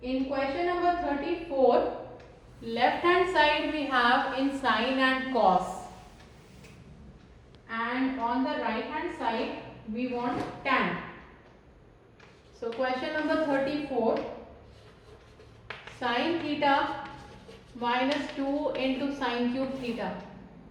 In question number 34, left hand side we have in sine and cos, and on the right hand side we want tan. So question number 34, sine theta minus 2 into sine cube theta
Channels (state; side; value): identical; both; correlation 1.00